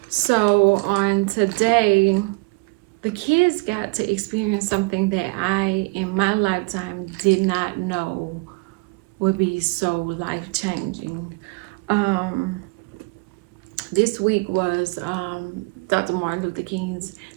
So on today, the kids got to experience something that I, in my lifetime, did not know would be so life-changing. Um, this week was Dr. Martin Luther King's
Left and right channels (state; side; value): quieter; left; 28.2 dB